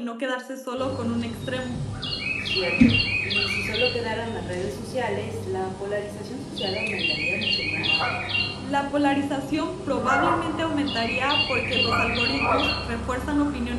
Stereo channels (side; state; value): both; identical; correlation 1.00